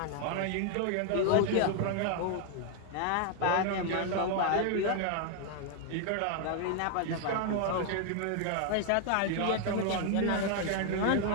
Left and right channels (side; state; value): both; different; correlation 0.00